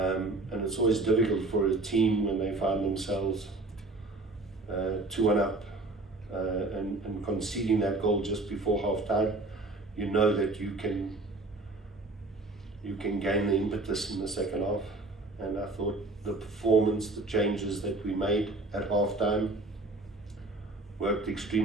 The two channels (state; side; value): quieter; left; 3.0 dB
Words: it's always difficult for a team when they find themselves 2-1 up and conceding that goal just before half-time. You know that you can gain the impetus in the second half. And I thought the performance, the changes that we made at half-time worked